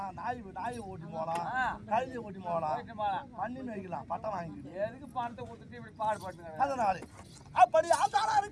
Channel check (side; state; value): both; identical; correlation 1.00